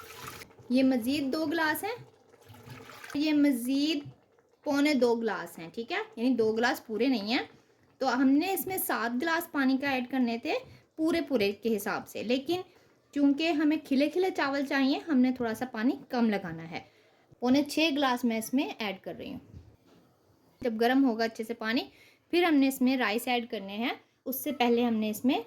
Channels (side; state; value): both; identical; correlation 1.00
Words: ये मज़ीद 2 ग्लास हैं, ये मज़ीद पौने 2 ग्लास हैं। ठीक है, यानी 2 ग्लास पूरे नहीं हैं। तो हमने इसमें 7 ग्लास पानी का ऐड करने थे पूरे के हिसाब से, लेकिन चूँकि हमें खिले खिले चावल चाहिए हमने थोड़ा सा पानी कम लगाना है। पौने 6 ग्लास मैं इसमें ऐड कर रही हूँ। जब गर्म होगा अच्छे से पानी फिर हमने इसमें राइस ऐड करने हैं। उससे पहले हमने इसमें